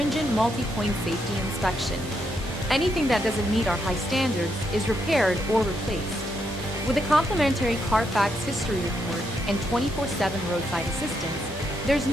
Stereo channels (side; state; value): both; normal; correlation 0.79